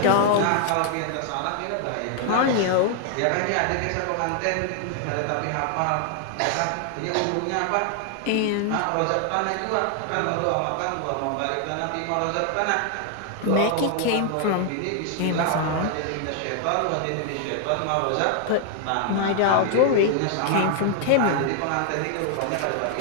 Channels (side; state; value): both; different; correlation 0.00